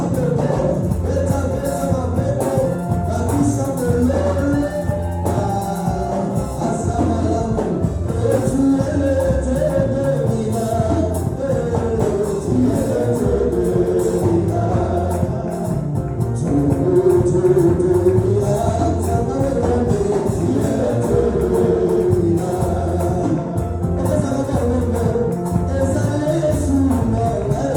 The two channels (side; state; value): both; identical; correlation 1.00